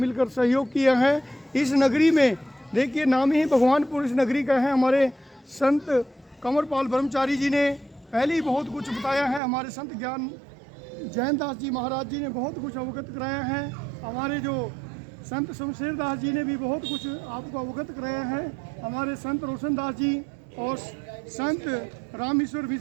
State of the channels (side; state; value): left; drops out; at 9.4 s